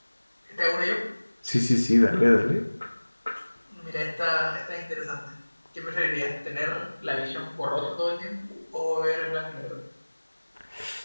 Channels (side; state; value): both; inverted; correlation -1.00